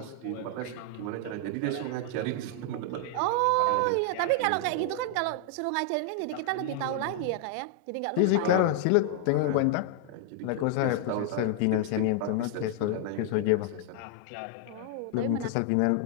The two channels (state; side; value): different; both; correlation 0.00